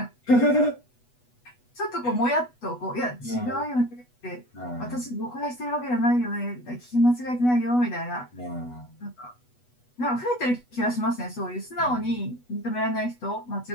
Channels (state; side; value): late; right; 8.1 ms